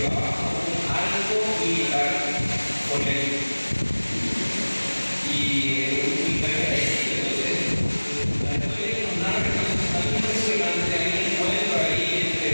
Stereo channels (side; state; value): both; inverted; correlation -1.00